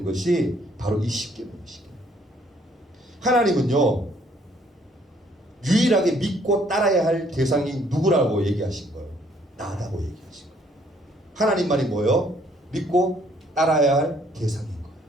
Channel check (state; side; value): normal; both; correlation 0.64